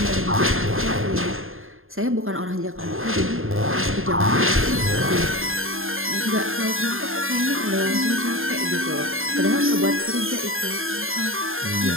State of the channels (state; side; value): late; left; 0.60 ms